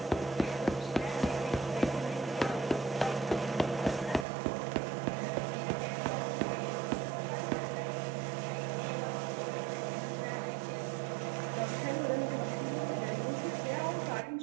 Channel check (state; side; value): drops out; left; at 4.2 s